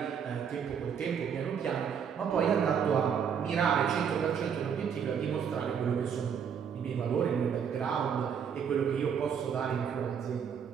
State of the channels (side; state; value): left; quieter; 7.4 dB